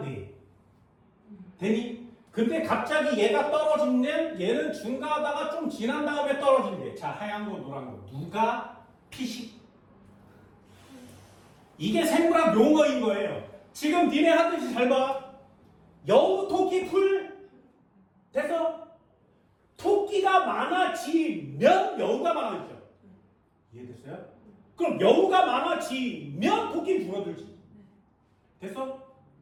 되니? 근데 갑자기 얘가 떨어지면 얘는 중과하다가 좀 지난 다음에 떨어진대. 자, 하얀 거, 노란 거. 누가 피식? 이게 생물학 용어인 거예요. 지금 니네 하듯이 잘 봐. 여우, 토끼, 풀. 돼서 토끼가 많아지면 여우가 많아지죠. 이해됐어요? 그럼 여우가 많아지면 토끼는 줄어들지. 됐어?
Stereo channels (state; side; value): identical; both; correlation 1.00